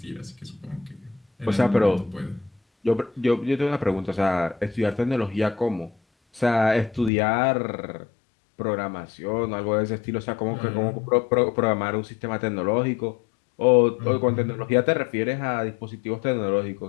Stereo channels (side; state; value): right; drops out; at 7.1 s